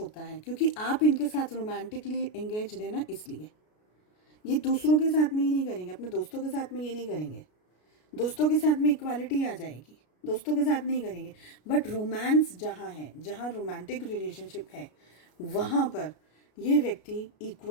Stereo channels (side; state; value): right; late; 33 ms